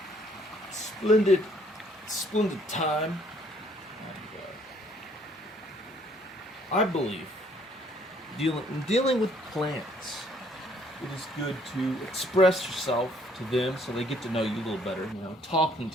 a splendid time. And, I believe dealing with plants, it is good to express yourself to them so they get to know you a little better. You know, talking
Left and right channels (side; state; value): both; normal; correlation 0.64